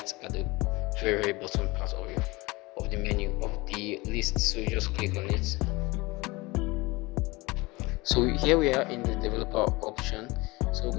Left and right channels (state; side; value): quieter; right; 23.0 dB